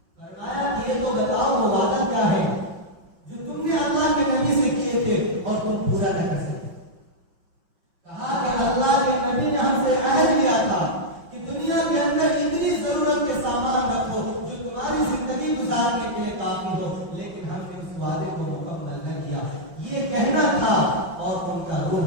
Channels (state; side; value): late; left; 5.6 ms